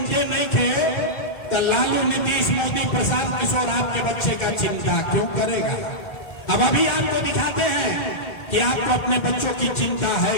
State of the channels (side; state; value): right; late; 1.4 ms